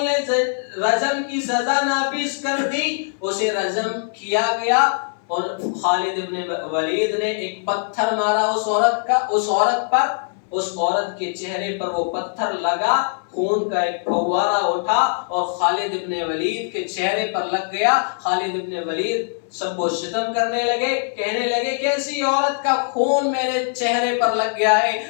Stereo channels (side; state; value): right; silent; 62 dB below the other